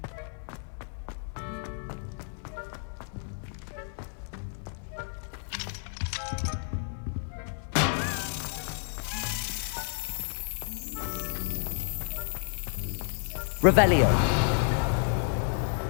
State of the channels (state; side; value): silent; right; digital silence